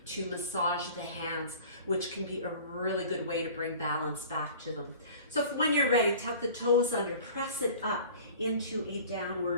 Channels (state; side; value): inverted; both; correlation -0.44